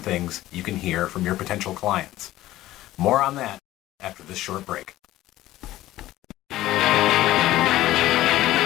things you can hear from your potential clients. More on that after this short break.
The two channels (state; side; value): quieter; right; 15.4 dB